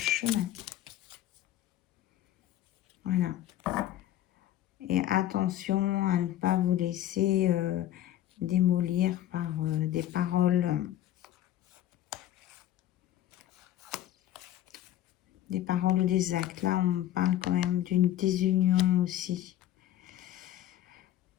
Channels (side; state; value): right; quieter; 12.6 dB